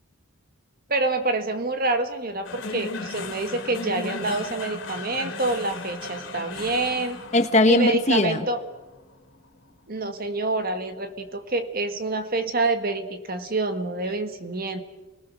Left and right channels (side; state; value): both; normal; correlation 0.06